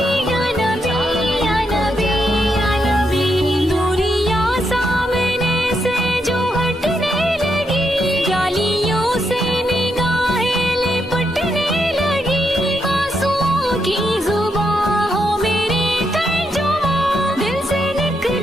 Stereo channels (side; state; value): both; normal; correlation 0.81